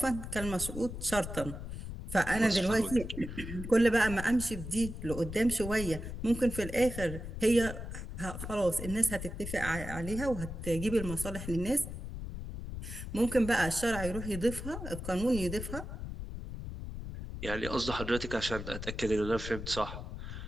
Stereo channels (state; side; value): noise; left; rumble, 8 dB below the sound